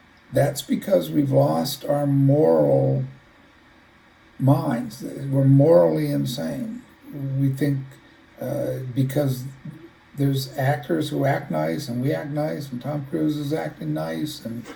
that's because we've lost our moral minds. We're morally insane. We think because there's actors who act nice and we act nice, and Tom Cruise is acting nice, and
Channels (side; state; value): both; identical; correlation 1.00